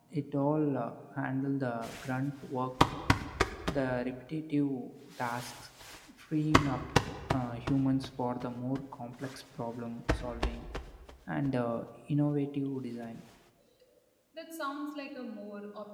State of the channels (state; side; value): identical; both; correlation 1.00